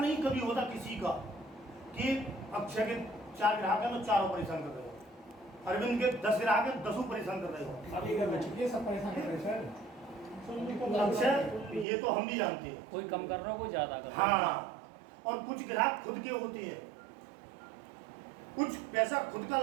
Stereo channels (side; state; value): left; drops out; at 11.9 s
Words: कभी होता किसी का कि अक्षय के 4 ग्राहक हैं तो चारों परेशान कर रहे हो, अरविंद के 10 ग्राहक हैं 10 परेशान कर रहे हो। अभी ये सब परेशान कर रहे हैं सर। अक्षय ये तो हम भी जानते हैं, कोई कम कर रहा हो, कोई ज्यादा कर रहा हो। हाँ, और कुछ ग्राहक खुद के होते हैं, कुछ पैसा खुद का